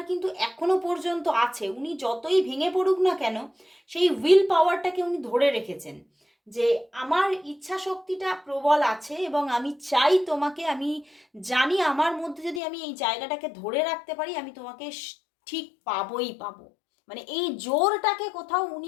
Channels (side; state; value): right; drops out; at 12.6 s